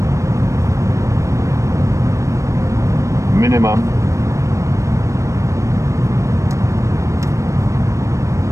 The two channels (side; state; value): left; late; 0.15 ms